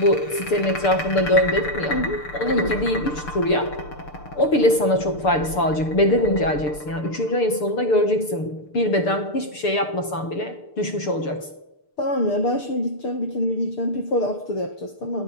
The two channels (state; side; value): late; right; 6.7 ms